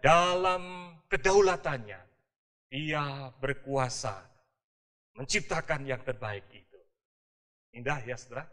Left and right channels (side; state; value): both; identical; correlation 1.00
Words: dalam kedaulatannya, Dia berkuasa menciptakan yang terbaik itu. Indah ya saudara